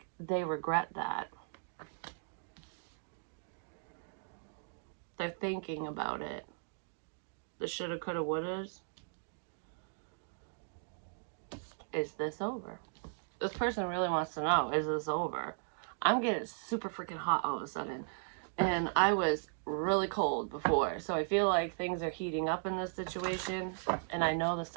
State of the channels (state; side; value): silent; left; digital silence